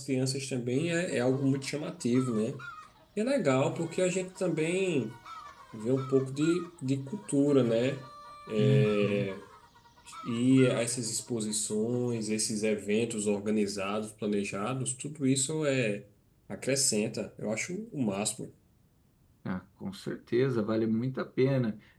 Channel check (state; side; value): identical; both; correlation 1.00